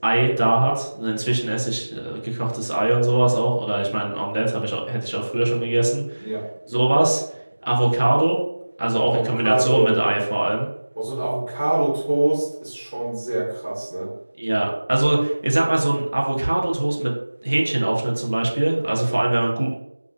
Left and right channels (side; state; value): both; inverted; correlation -1.00